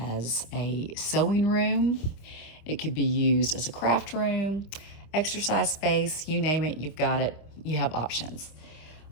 a sewing room. It could be used as a craft room, exercise space, you name it, you've got it. You have options.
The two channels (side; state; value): right; late; 25 ms